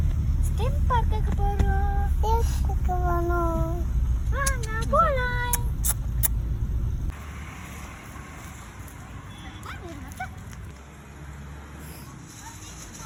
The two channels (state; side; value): identical; both; correlation 1.00